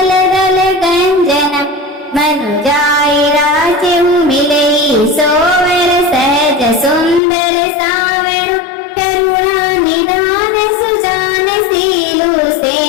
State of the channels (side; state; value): right; drops out; at 7.2 s